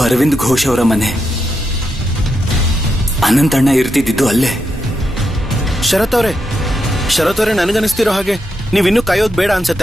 ಅರವಿಂದ್ ಘೋಷ್ ಅವರ ಮನೆ. ಅನಂತಣ್ಣ ಇರ್ತಿದ್ದು ಅಲ್ಲೇ. ಶರತ್ ಅವರೇ, ಶರತ್ ಅವರೇ, ನನಗನ್ನಿಸ್ತಿರೋ ಹಾಗೆ ನೀವಿನ್ನೂ ಕಾಯೋದು ಬೇಡ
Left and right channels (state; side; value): normal; both; correlation 0.84